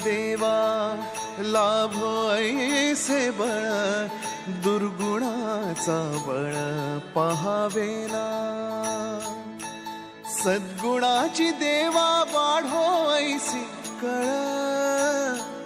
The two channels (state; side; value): identical; both; correlation 1.00